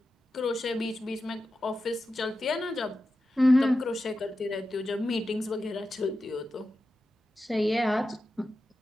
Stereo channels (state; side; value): normal; both; correlation 0.91